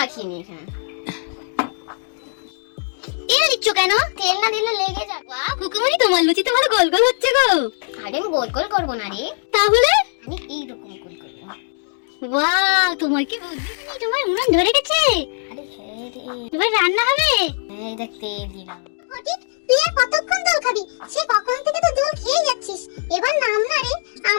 নি। এখানে তেল দিচ্ছ কেন? তেল না দিলে লেগে যাবে। বাহ কুকুমনি, তোমার লুচি তো ভালো গোল গোল হচ্ছে গো। আরে আমি গোল গোল করবো না রে, তাহলে আমি এইরকম গোল করবো। বাহ, তোমার কি বুদ্ধি, তুমি তোমার উনুন ধরে গেছে। আরে হ্যাঁ রে, এবার রান্না হবে। এই দেখ তেল দিলাম। ফটিক, তুই আর কতক্ষণ দোল খাবি? সে কখন থেকে তো দোল খেয়ে যাচ্ছিস, এবার নাম না রে,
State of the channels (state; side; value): silent; right; digital silence